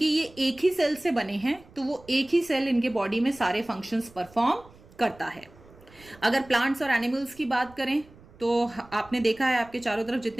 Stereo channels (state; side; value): noise; right; rumble, 24 dB below the sound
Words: ये एक ही सेल से बने हैं तो वो एक ही सेल इनके बॉडी में सारे फंक्शंस परफॉर्म करता है। अगर प्लांट्स और एनिमल्स की बात करें तो आपने देखा है आपके चारों तरफ